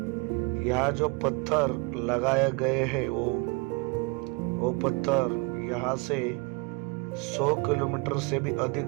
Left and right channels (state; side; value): quieter; left; 30.0 dB